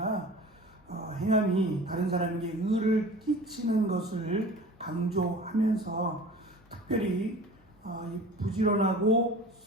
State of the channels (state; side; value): normal; both; correlation 0.40